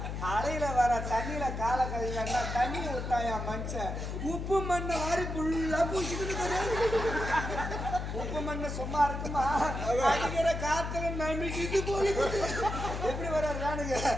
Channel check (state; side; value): noise; left; hum, 4 dB below the sound